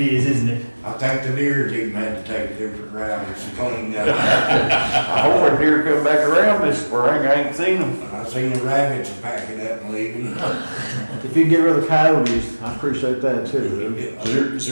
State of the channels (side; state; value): both; inverted; correlation -1.00